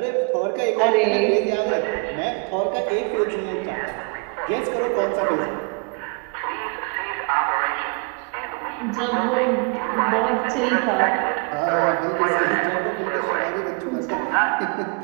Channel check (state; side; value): quieter; left; 36.6 dB